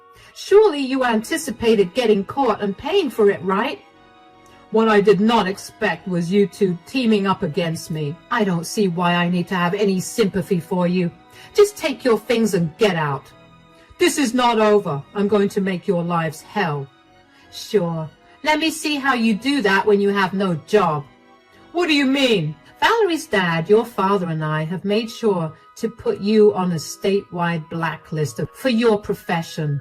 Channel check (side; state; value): both; identical; correlation 1.00